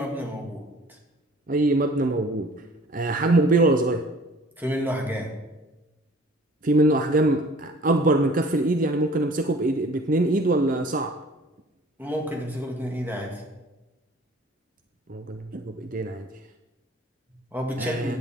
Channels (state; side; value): normal; both; correlation 0.50